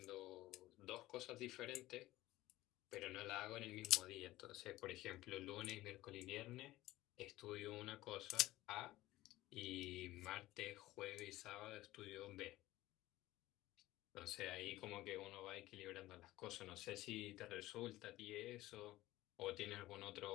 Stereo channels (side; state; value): right; quieter; 16.9 dB